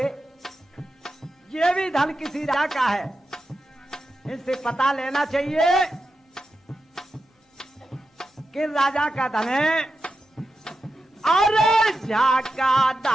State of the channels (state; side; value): normal; both; correlation 0.90